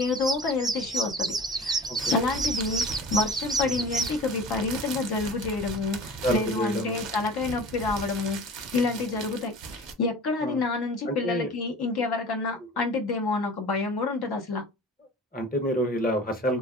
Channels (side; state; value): both; normal; correlation 0.40